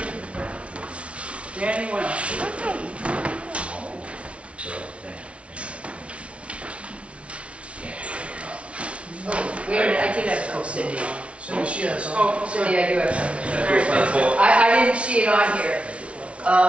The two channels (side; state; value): left; late; 0.061 ms